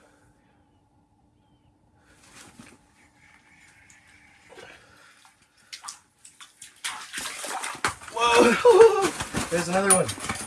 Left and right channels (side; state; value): both; identical; correlation 1.00